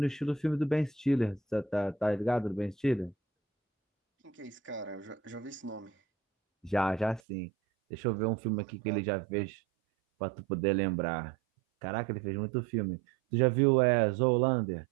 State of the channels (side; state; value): left; drops out; at 7.2 s